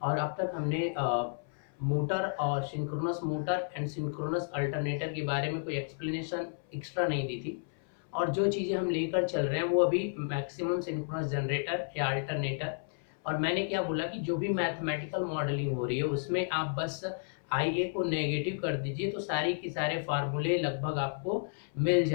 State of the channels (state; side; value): silent; right; 56 dB below the other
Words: और अब तक हमने मोटर और synchronous motor and synchronous alternator के बारे में कोई एक्सप्लेनेशन एक्स्ट्रा नहीं दी थी। और जो चीज़ें हम लेकर चल रहे हैं वो अभी मैक्सिमम सिंक्रोनस जनरेटर या अल्टरनेटर। और मैंने क्या बोला कि जो भी मैथमेटिकल मॉडलिंग हो रही है उसमें आप बस आई ए को नेगेटिव कर दीजिए तो सारी की सारे फार्मूले लगभग आपको मिल